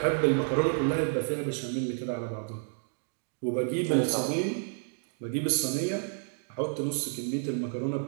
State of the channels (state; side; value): silent; left; 58 dB below the other